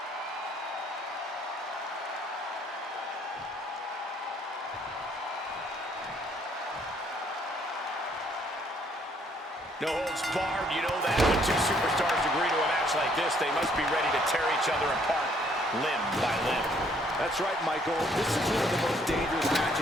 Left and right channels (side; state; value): both; normal; correlation 0.66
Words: No holds barred, you know that. When two superstars agree to a match like this, they must be ready to tear each other apart, limb by limb. That's right, Michael. This is one of the most dangerous